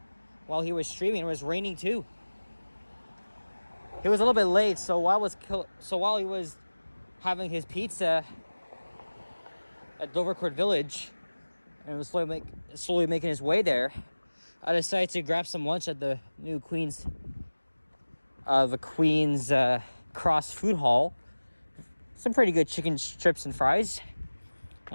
while he was streaming. It was raining too. It was a little bit late, so while he was having his pizza at Dovercourt Village and was slowly making his way there, I decided to grab some lunch at the new Queen's Cross Food Hall. Some pretty good chicken strips and fries.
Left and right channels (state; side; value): inverted; both; correlation -1.00